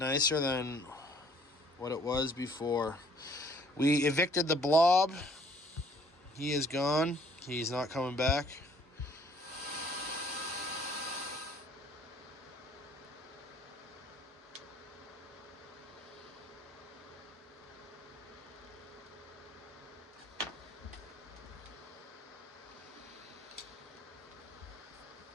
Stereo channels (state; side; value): normal; both; correlation 0.59